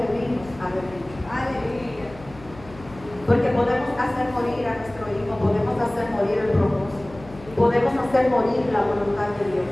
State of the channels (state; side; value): noise; left; hum, 19 dB below the sound